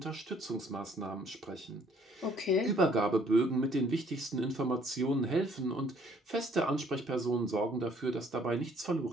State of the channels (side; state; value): both; normal; correlation 0.61